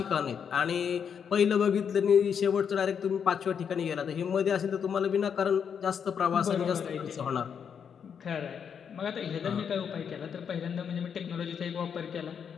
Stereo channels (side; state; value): right; quieter; 7.3 dB